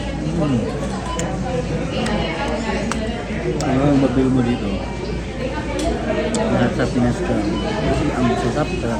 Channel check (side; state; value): both; identical; correlation 1.00